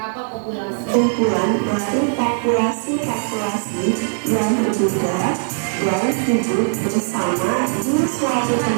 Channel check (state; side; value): silent; left; 66 dB below the other